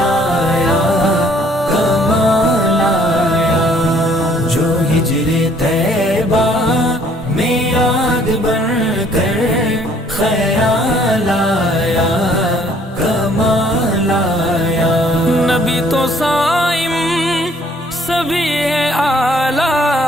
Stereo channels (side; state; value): both; normal; correlation 0.61